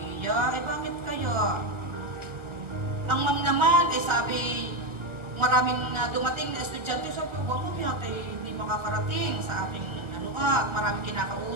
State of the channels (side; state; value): left; late; 1.2 ms